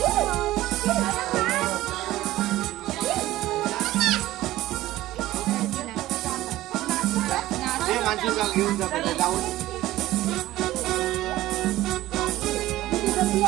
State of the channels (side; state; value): left; quieter; 15.9 dB